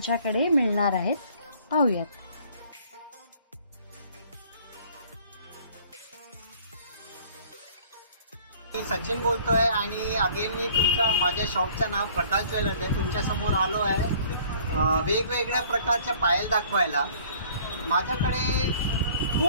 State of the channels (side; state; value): both; inverted; correlation -0.54